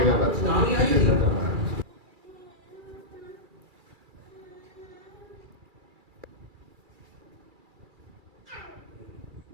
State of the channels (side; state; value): left; late; 2.3 ms